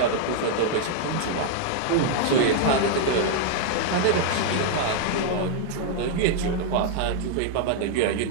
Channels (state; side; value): different; both; correlation 0.00